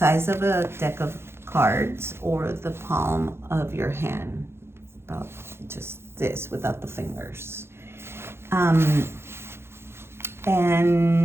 of a deck of cards or the palm of your hand, about just this without the fingers.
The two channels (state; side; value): late; left; 0.12 ms